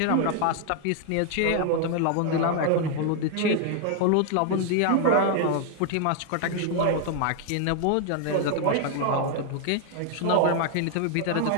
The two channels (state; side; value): different; both; correlation 0.00